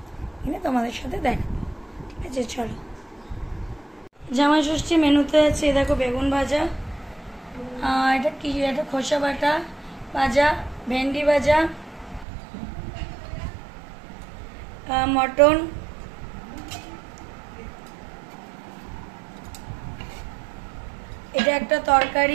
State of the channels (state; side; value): drops out; left; at 12.2 s